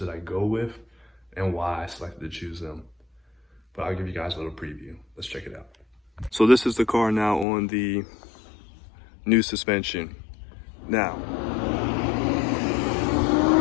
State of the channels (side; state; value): right; drops out; at 7.5 s